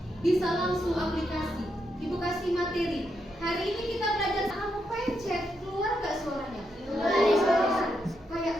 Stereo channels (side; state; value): both; normal; correlation 0.82